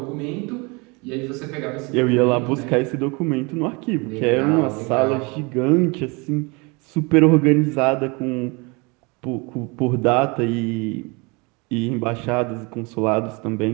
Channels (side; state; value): left; quieter; 28.5 dB